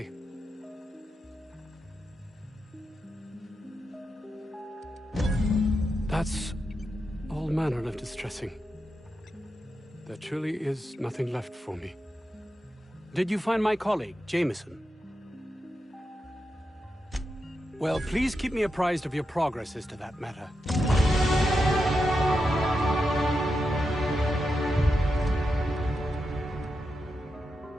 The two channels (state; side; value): normal; both; correlation 0.88